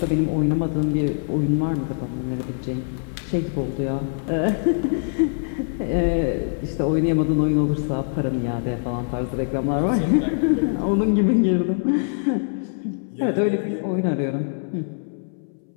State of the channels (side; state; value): right; silent; 62 dB below the other